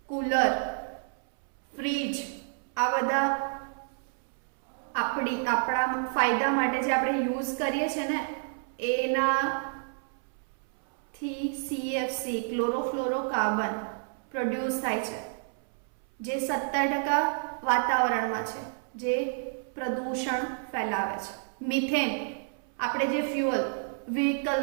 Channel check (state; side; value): silent; left; 58 dB below the other